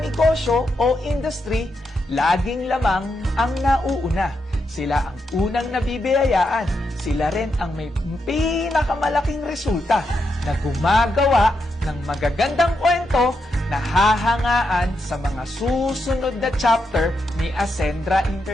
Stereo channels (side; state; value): both; normal; correlation 0.83